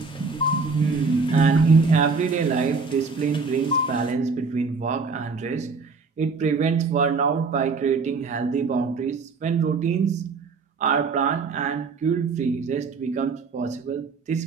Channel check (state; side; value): quieter; left; 4.6 dB